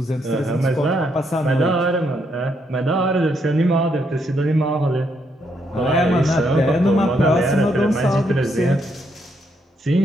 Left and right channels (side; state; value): both; normal; correlation 0.76